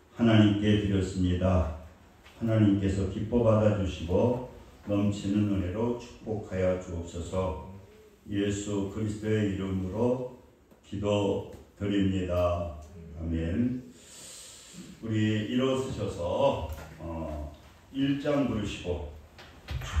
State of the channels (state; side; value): identical; both; correlation 1.00